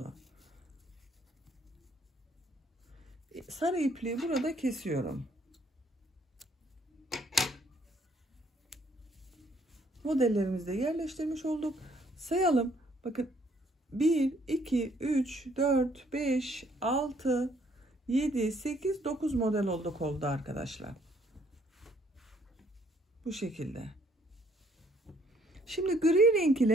Sarı ipliği burada kesiyorum. Modellerimizi de yerleştirmiş olduk. Sayalım. Bakın 1, 2, 3, 4, 5, 6, 7, 8, 9 model olduk oldu arkadaşlar. Bu şekilde. Şimdi gri renk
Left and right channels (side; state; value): both; normal; correlation 0.65